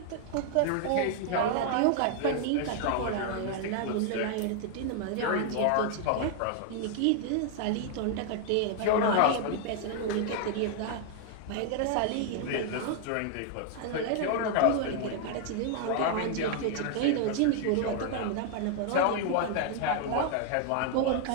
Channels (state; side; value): different; both; correlation 0.00